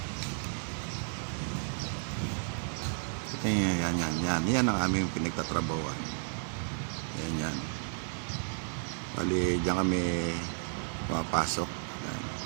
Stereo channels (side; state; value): left; silent; 56 dB below the other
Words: Ito yan ang aming pinagtatrabawan. Yan. Bali, diyan kami pumapasok. Yan.